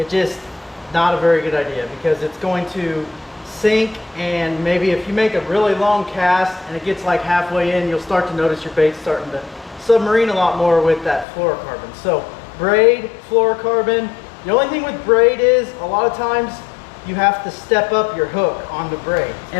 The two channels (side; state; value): right; drops out; at 11.2 s